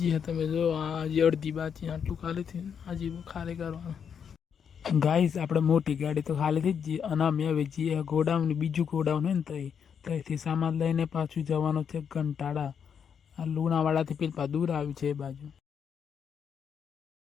છે તમે જો આજે અડધી બાકી આટલું ખાલી થયું હજી ખાલી કરવાનું ગાઈસ। આપણે મોટી ગાડી તો ખાલી થઈ જ ગઈ અને અમે હવે જઈએ ગોડાઉન બીજું ગોડાઉન હોય ને ત્યાંથી સામાન લઈને પાછું જવાનું છે ઘંટાળા આ લુણાવાડાથી પેલા દૂર આવ્યું છે એ બાજુ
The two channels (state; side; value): quieter; right; 7.4 dB